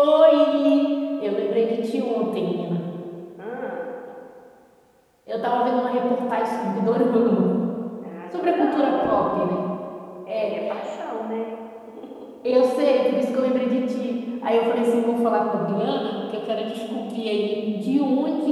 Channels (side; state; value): both; identical; correlation 1.00